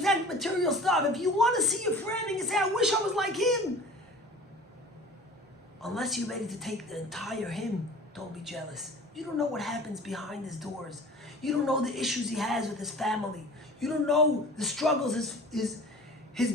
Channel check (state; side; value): normal; both; correlation 0.43